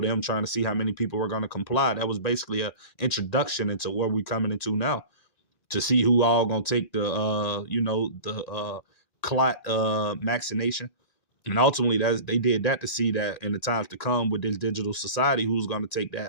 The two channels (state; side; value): late; right; 1.9 ms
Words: trying to see how many people were going to comply. That was basically a introduction into where we're coming into now, to see who all going to take the clot vaccination. And ultimately, they did that to see that in the times to come with this digital society, who's going to take